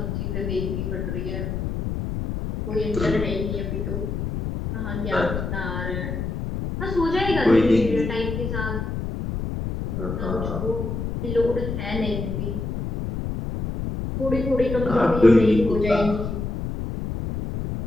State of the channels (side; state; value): left; noise; rumble, 3 dB below the sound